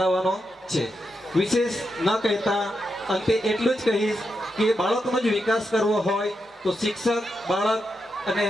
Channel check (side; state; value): both; normal; correlation 0.85